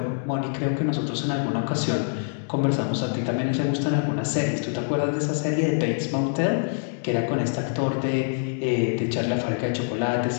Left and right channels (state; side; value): silent; right; digital silence